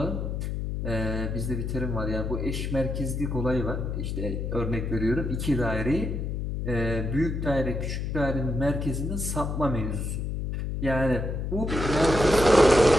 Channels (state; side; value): noise; left; hum, 2 dB below the sound